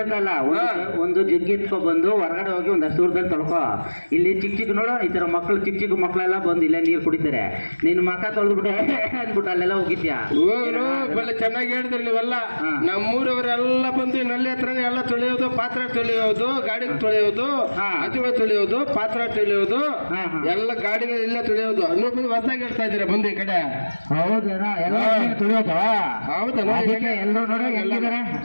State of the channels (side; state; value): both; inverted; correlation -1.00